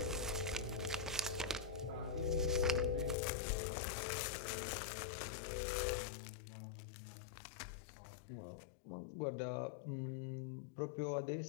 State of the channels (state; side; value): drops out; right; at 3.2 s